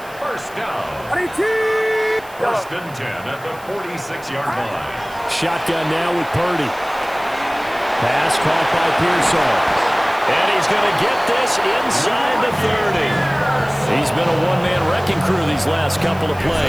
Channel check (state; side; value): noise; right; hiss, 22 dB below the sound